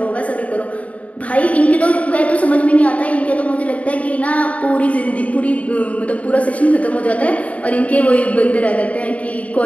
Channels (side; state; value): right; late; 0.067 ms